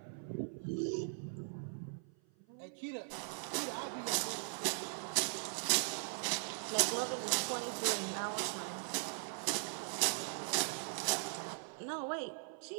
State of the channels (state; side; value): silent; left; 51 dB below the other